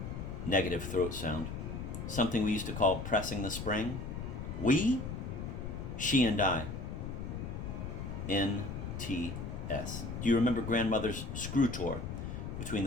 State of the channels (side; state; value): left; noise; rumble, 6 dB below the sound